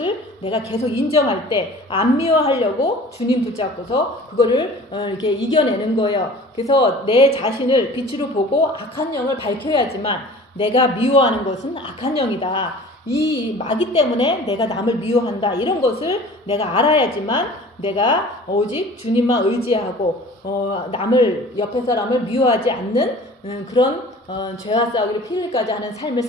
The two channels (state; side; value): normal; both; correlation 0.44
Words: 내가 계속 인정할 때 안 미워하려고 주님 붙잡고서 그거를 이렇게 이겨내는 거예요. 그래서 내 자신을 빛으로 보고 악한 영을 밝혀야지만, 내가 미워하는 것은 악한 영이다, 이 마귀 때문에 내가 남을 미워한다, 이런 것을 내가 알아야지만 내가 오직 주님만 의지하고 남을, 옆에 사람을 미워하지 않는 그런 죄와 싸우기를 피 흘리까지 하는 삶을